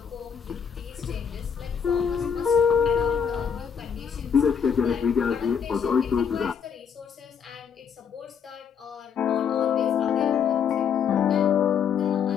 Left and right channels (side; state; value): right; quieter; 7.2 dB